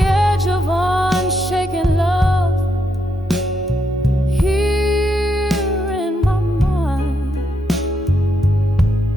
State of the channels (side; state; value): both; normal; correlation 0.79